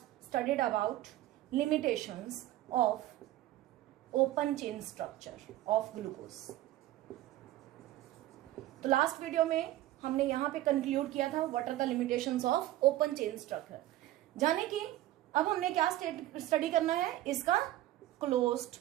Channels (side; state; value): left; quieter; 15.0 dB